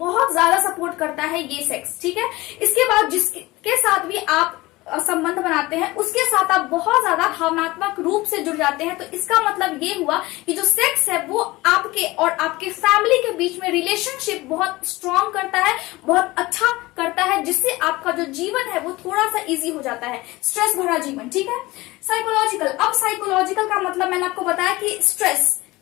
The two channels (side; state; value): right; quieter; 20.3 dB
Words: ज्यादा सपोर्ट करता है ये सेक्स। ठीक है, इसके बाद जिसके साथ भी आप संबंध बनाते हैं उसके साथ आप बहुत ज्यादा भावनात्मक रूप से जुड़ जाते हैं। तो इसका मतलब ये हुआ कि जो सेक्स है वो आपके और आपके फैमिली के बीच में रिलेशनशिप बहुत स्ट्रांग करता है, बहुत अच्छा करता है, जिससे आपका जो जीवन है वो थोड़ा सा इजी हो जाता है, स्ट्रेस भरा जीवन। ठीक है, साइकोलॉजिकल, अब साइकोलॉजिकल का मतलब मैंने आपको बताया कि स्ट्रेस